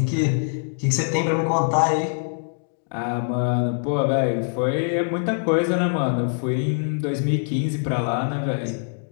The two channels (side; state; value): right; silent; digital silence